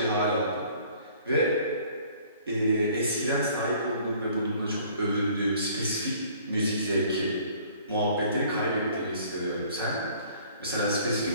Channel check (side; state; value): both; inverted; correlation -0.55